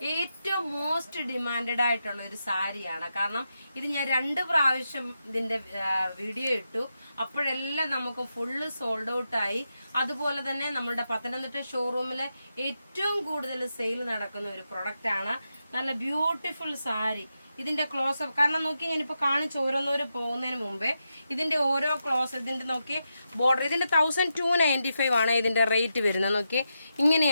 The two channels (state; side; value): inverted; both; correlation -0.87